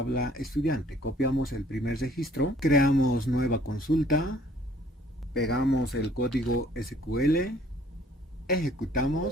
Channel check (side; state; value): both; normal; correlation 0.58